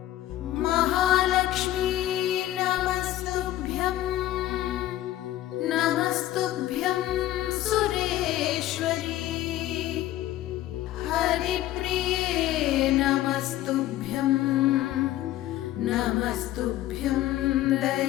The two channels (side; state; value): right; quieter; 14.4 dB